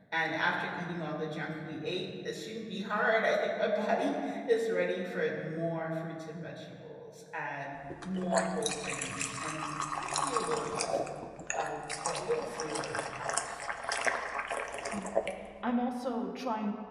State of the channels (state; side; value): identical; both; correlation 1.00